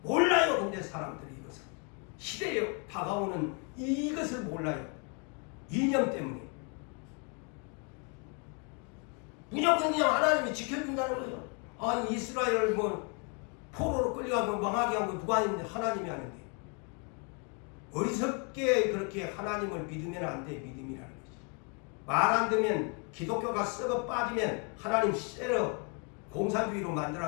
몰라요. 근데 사람들이 이것을 시대에 다가오는 이것을 몰라요. 이념 때문에. 무조건 그냥 하나님이 지켜준다는 거죠. 아니 이스라엘을 뭐 포로로 끌려가고 망하게 한 거 누가 했는데 하나님이 하는데. 어리석게 그렇게 하나님을 믿으면 안 돼. 믿음이라는 거지. 말 안 듣면 기독교가 썩어 빠지면 하나님 쎄러 공산주의로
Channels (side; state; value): right; quieter; 36.2 dB